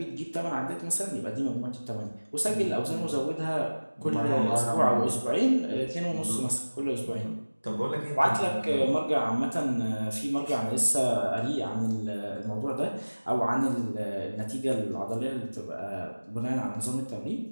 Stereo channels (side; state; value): both; inverted; correlation -1.00